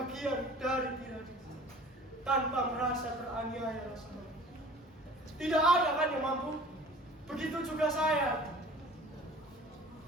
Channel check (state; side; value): normal; both; correlation 0.46